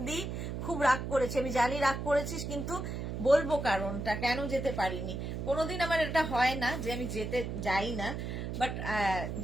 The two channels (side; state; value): right; noise; hum, 4 dB below the sound